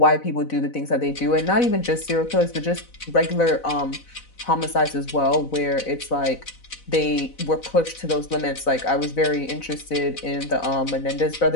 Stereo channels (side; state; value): right; late; 4.0 ms